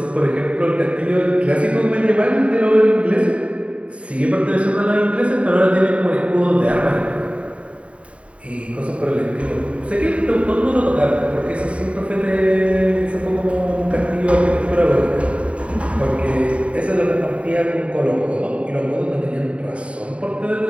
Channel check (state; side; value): late; left; 0.063 ms